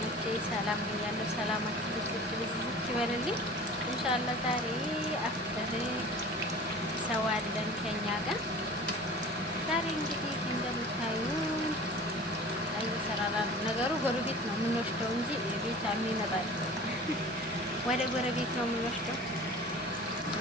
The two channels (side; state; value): both; normal; correlation 0.41